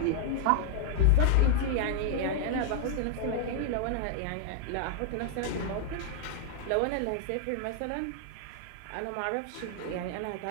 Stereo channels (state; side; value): different; both; correlation -0.01